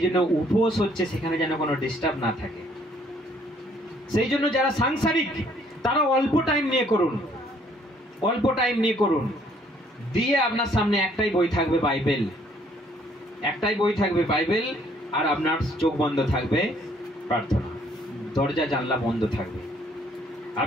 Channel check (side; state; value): both; normal; correlation 0.63